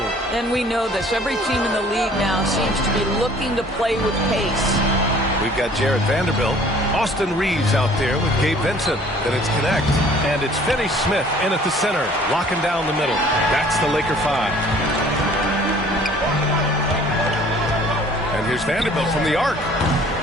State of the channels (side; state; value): both; normal; correlation 0.53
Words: And we know this. Every team in the league now seems to be looking to play with pace. We've got Jared Vanderbilt, Austin Reeves out there with Gabe Vincent. Then it's Connect. And it's Finney Smith in at the center, locking down the middle. That's the Laker 5. And here's Vanderbilt from the arc.